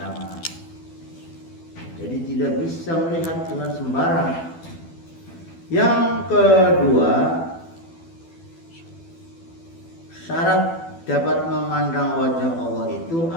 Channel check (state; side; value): late; right; 12 ms